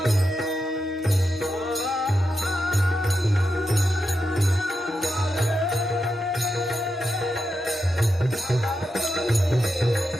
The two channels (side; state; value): both; normal; correlation 0.87